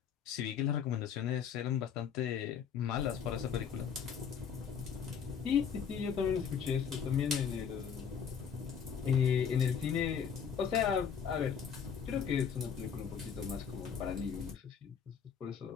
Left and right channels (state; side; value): quieter; right; 7.3 dB